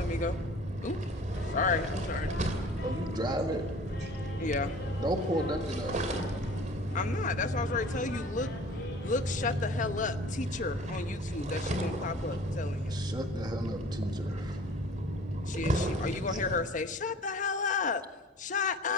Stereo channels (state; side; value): normal; both; correlation 0.46